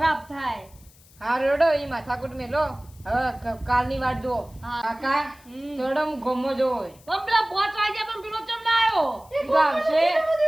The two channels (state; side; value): noise; left; hiss, 27 dB below the sound